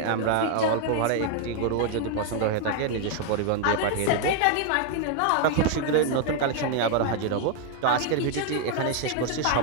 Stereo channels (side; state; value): both; different; correlation 0.00